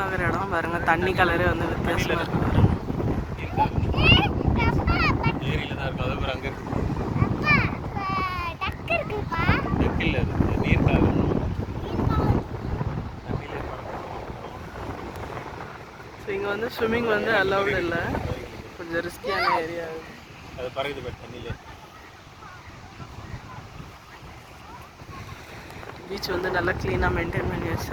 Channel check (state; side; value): identical; both; correlation 1.00